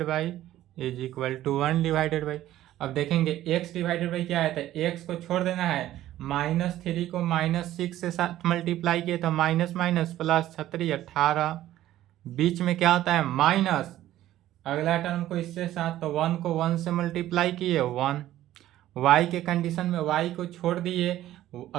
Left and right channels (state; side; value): quieter; left; 13.7 dB